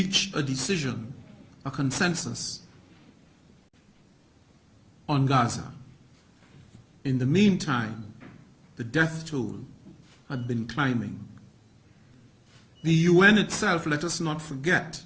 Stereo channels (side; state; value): both; identical; correlation 1.00